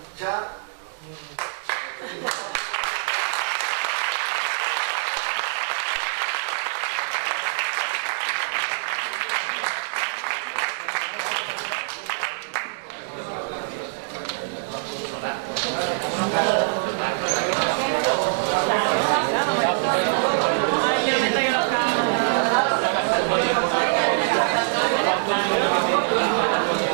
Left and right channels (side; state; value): left; silent; digital silence